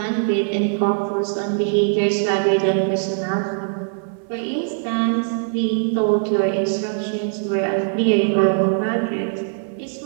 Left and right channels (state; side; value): silent; left; 65 dB below the other